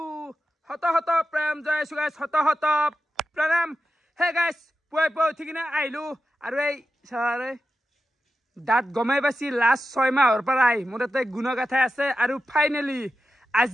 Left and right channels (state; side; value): normal; both; correlation 0.91